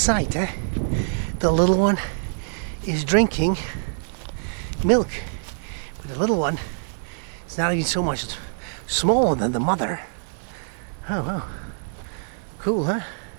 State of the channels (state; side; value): silent; left; digital silence